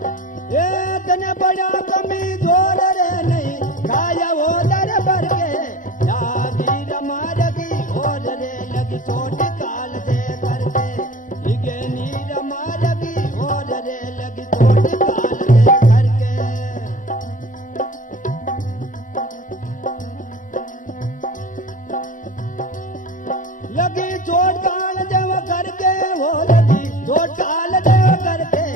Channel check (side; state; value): right; late; 0.38 ms